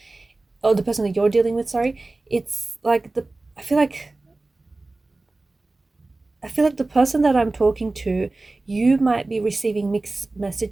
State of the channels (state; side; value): quieter; left; 3.2 dB